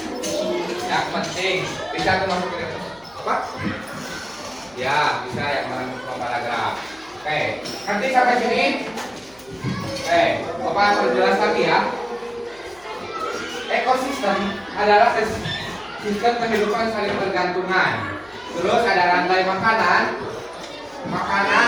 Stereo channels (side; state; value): left; noise; hum, 28 dB below the sound